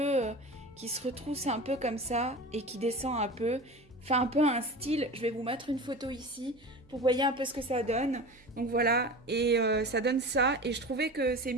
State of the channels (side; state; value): right; noise; hum, 28 dB below the sound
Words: qui se retrousse un peu comme ça et qui descend un peu. Fait un peu un style, je vais vous mettre une photo ici pour voyez un peu ce que ça donne. Donc voilà, et ça donne ça. Et je trouvais que c'est